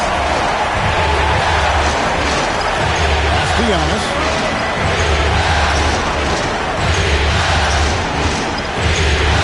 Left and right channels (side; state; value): both; identical; correlation 1.00